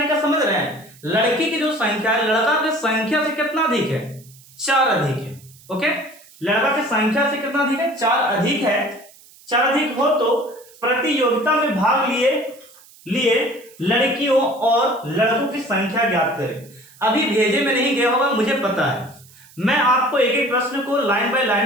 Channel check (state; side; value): noise; right; hiss, 25 dB below the sound